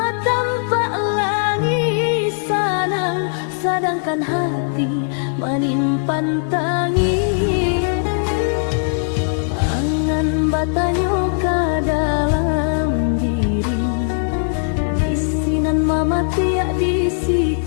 tampak langit sana, sedangkan hati menyimpan tangis. Angan batanyo ka dalam diri, bisinan mama tiak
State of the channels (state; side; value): silent; right; digital silence